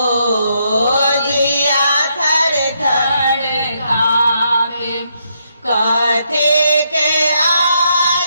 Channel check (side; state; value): both; inverted; correlation -0.77